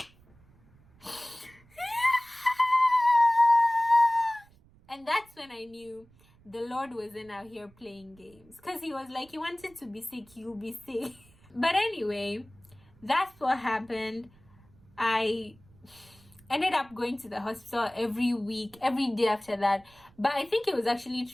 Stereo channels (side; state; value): right; noise; rumble, 28 dB below the sound